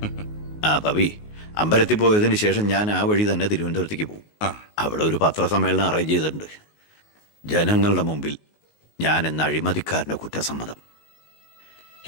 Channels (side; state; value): right; late; 19 ms